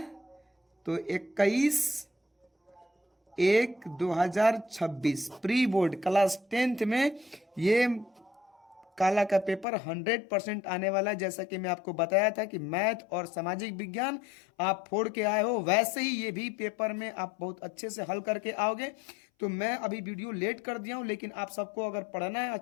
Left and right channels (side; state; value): right; drops out; at 9.7 s